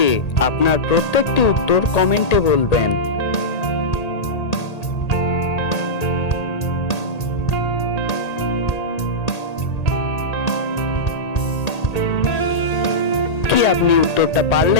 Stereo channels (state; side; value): late; right; 1.8 ms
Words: আপনার প্রত্যেকটি উত্তর কমেন্টে বলবেন। কি আপনি উত্তরটা